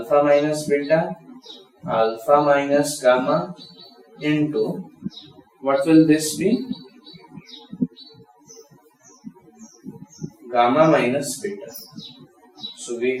minus beta, alpha minus gamma into, what will this be? Gamma minus beta. So we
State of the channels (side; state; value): both; identical; correlation 1.00